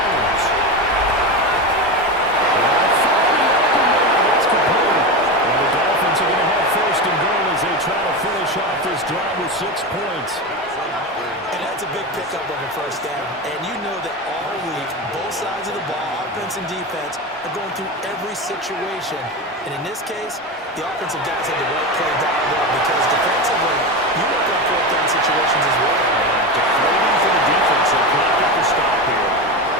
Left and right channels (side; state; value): both; normal; correlation 0.20